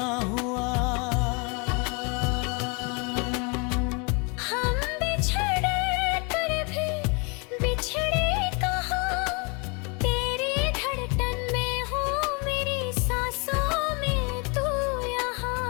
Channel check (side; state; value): right; quieter; 32.0 dB